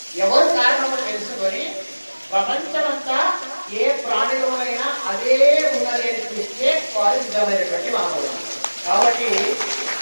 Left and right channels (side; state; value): both; inverted; correlation -1.00